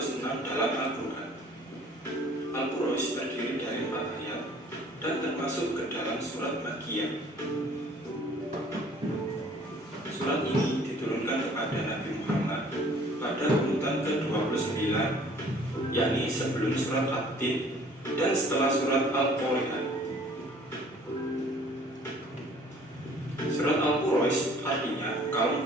dalam Al-Quran. Al-Qur'an terdiri dari 4 ayat dan termasuk ke dalam surat Makkiyah. Surat ini diturunkan kepada Nabi Muhammad pada urutan ke-29, yakni sebelum surat At-Tin dan setelah surat Al-Qari'ah. Surat Al-Qur'an artinya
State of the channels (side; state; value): both; normal; correlation 0.54